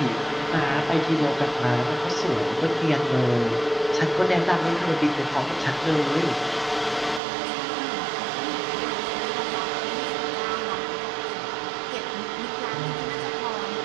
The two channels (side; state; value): left; drops out; at 7.2 s